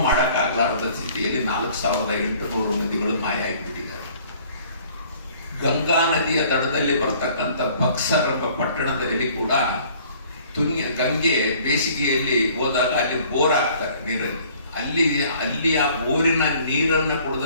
ಮಾಡಕ್ಕಾಗಲಾರದ ಸ್ಥಿತಿಯಲ್ಲಿ 4,800 ನದಿಗಳು ಮಾಯ ಆಗಿಬಿಟ್ಟಿದ್ದಾರೆ. ಗಂಗಾ ನದಿಯ ದಡದಲ್ಲಿ ಬರ್ತಕ್ಕಂಥ ಬಕ್ಸರ್ ಎಂಬ ಪಟ್ಟಣದಲ್ಲಿ ಕೂಡ ಗಂಗೆ ಬೇಸಿಗೆಯಲ್ಲಿ ಹೋದಾಗ ಅಲ್ಲಿ ಬೋರ್ ಆಗ್ತಾರೆ ನೀರಲ್ಲಿ. ಅಲ್ಲಿ ಆ ಬೋರಿನ ನೀರನ್ನು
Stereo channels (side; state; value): both; inverted; correlation -0.55